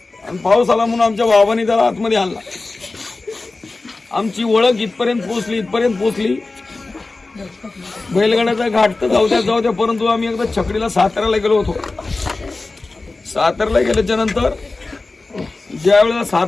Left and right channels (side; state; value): right; quieter; 3.4 dB